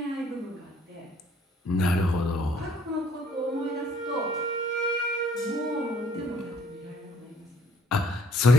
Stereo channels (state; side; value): normal; both; correlation 0.60